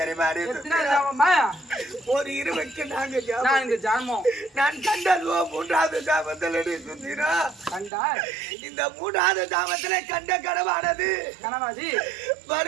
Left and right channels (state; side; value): drops out; left; at 7.9 s